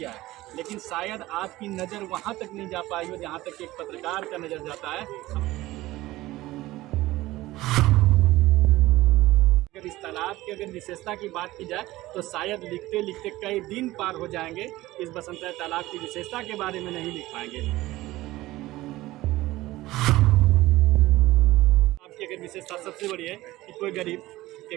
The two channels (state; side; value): quieter; left; 17.6 dB